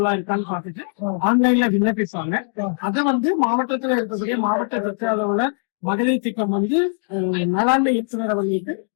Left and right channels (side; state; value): right; silent; 56 dB below the other